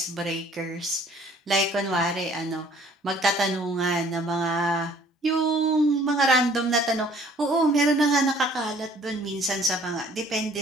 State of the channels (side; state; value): both; normal; correlation 0.56